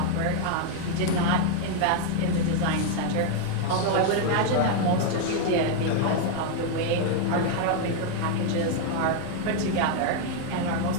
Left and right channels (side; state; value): both; different; correlation 0.00